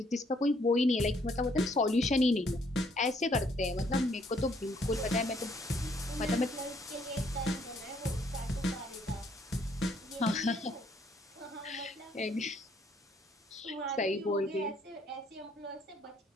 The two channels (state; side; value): normal; both; correlation 0.67